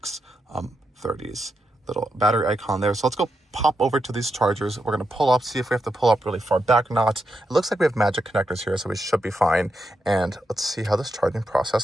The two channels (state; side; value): normal; both; correlation 0.85